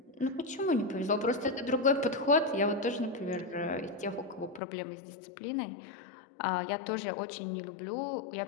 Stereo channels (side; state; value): right; drops out; at 4.6 s